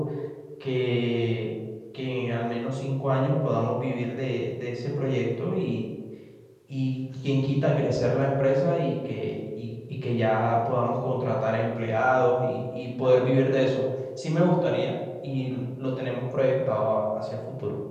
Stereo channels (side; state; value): both; identical; correlation 1.00